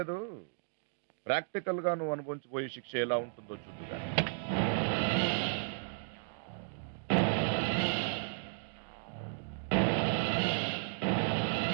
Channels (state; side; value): silent; left; digital silence